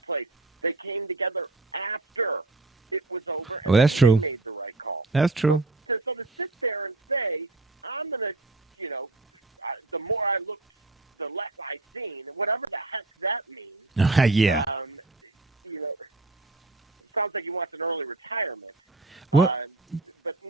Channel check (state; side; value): quieter; left; 3.0 dB